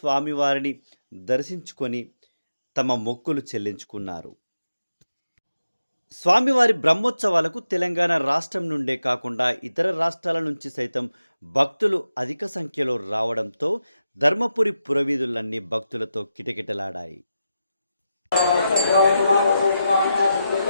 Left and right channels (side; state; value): both; inverted; correlation -0.88